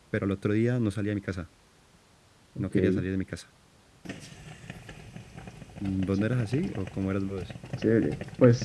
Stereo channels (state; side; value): identical; both; correlation 1.00